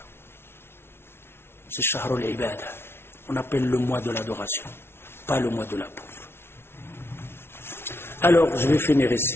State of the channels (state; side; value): late; right; 0.12 ms